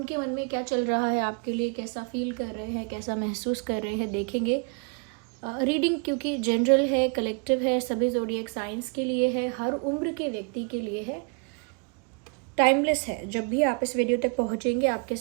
मन में क्या चल रहा है आपके लिए, कैसा फील कर रहे हैं, कैसा महसूस कर रहे हैं, देखेंगे। रीडिंग क्योंकि जनरल है, कलेक्टिव है, सभी ज़ोडिएक साइंस के लिए है, हर उम्र के व्यक्ति के लिए है, टाइमलेस है। जब भी आप इस वीडियो तक पहुंचेंगे आपके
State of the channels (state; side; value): quieter; left; 36.5 dB